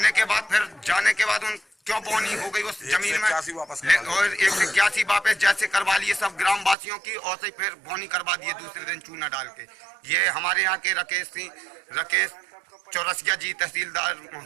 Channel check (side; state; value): left; drops out; at 6.8 s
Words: के बाद फिर जाने के बाद उन क्यों बोनी हो गई उस जमीन में और 181 वापस जैसे करवा लिए सब ग्राम वासियों की और से फिर बोनी करवा दिए दूसरे दिन चूना डाल के। ये हमारे यहाँ के राकेश चौरसिया जी तहसीलदार